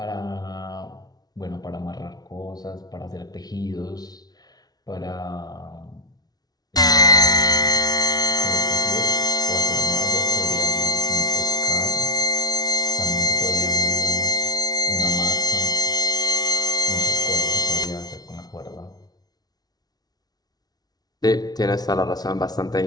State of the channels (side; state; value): right; late; 0.19 ms